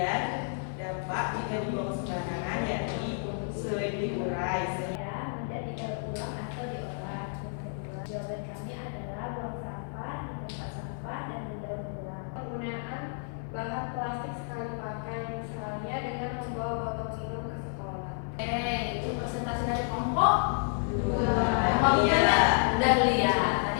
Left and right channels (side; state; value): right; silent; digital silence